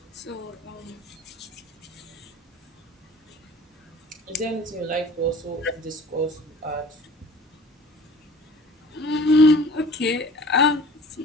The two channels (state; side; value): normal; both; correlation 0.45